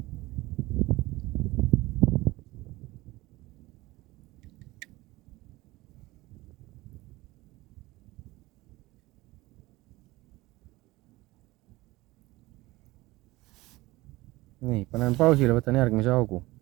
Nii, panen pausile, võtan järgmise augu.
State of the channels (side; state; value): left; quieter; 19.9 dB